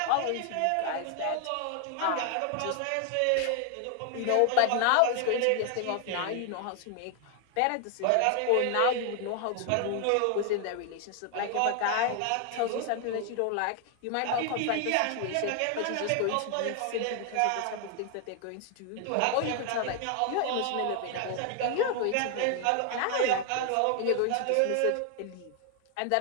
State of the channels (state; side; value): different; both; correlation 0.00